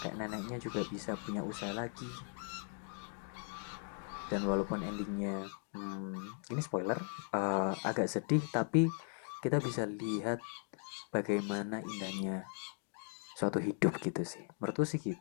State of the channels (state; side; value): silent; right; 52 dB below the other